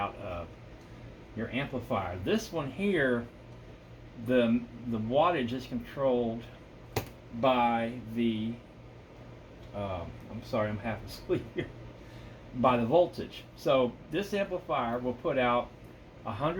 of your amplifier. This one here, the wattage is controlled by the I'm sorry, I'm half asleep here, by the voltage. So this amplifier will put out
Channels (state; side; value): identical; both; correlation 1.00